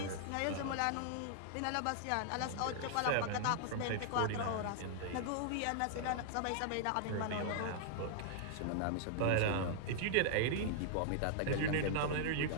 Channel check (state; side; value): different; both; correlation -0.01